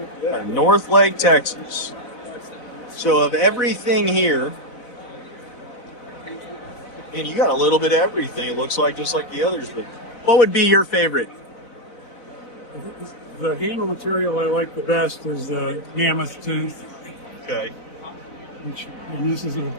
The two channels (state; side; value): late; right; 4.0 ms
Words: North Lake, Texas. So of everything here, and you got a little bit of everything. It looks like just like the others. But what would be your favorite? The handle material I like the best is the mammoth tooth. Okay. And this